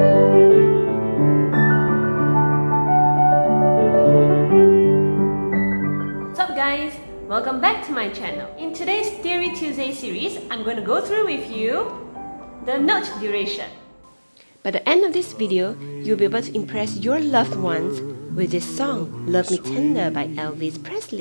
up guys? Welcome back to my channel. In today's Theory Tuesday series, I'm going to go through with you the note duration. By the end of this video, you'll be able to impress your loved ones with this song, Love Me Tender by Elvis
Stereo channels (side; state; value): both; inverted; correlation -1.00